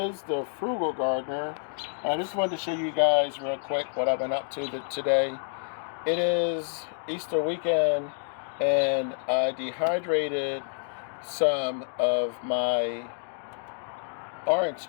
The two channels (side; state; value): right; silent; digital silence